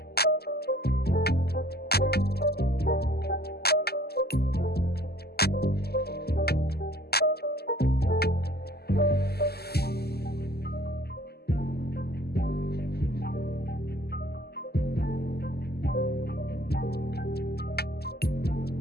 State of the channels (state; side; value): late; right; 0.46 ms